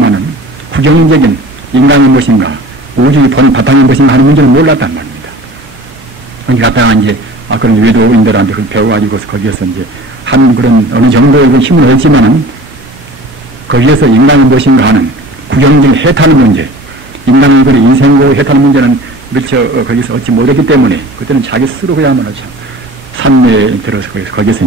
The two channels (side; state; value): both; normal; correlation 0.42